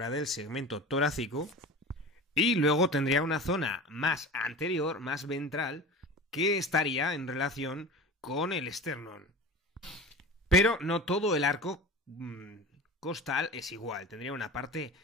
del segmento torácico, y luego tendría una zona más anterior, más ventral, que estaría en relación con el esternón. Pero no todo el arco costal es igual. Tendría una parte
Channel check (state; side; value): normal; both; correlation 0.34